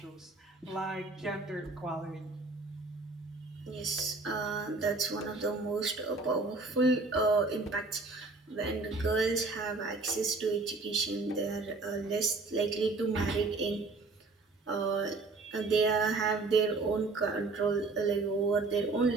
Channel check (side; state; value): left; quieter; 3.6 dB